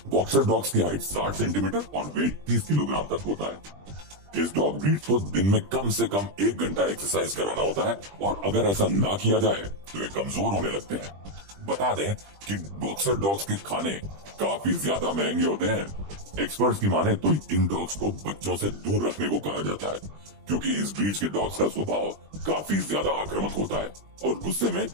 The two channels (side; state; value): left; late; 20 ms